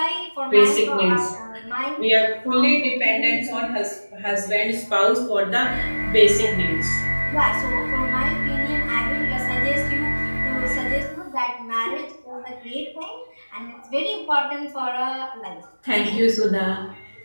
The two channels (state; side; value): inverted; both; correlation -1.00